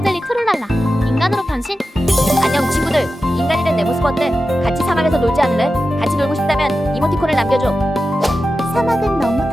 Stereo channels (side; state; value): both; normal; correlation 0.92